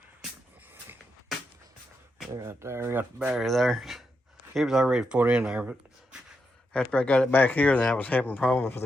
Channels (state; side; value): normal; both; correlation 0.84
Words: Right there, we got the battery there. It was already put in there, but after I got it back here, then I was having problems with